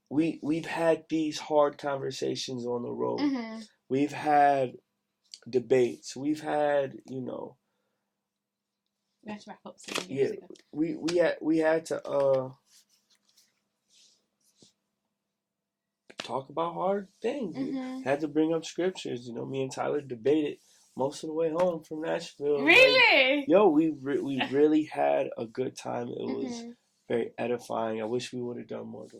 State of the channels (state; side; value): identical; both; correlation 1.00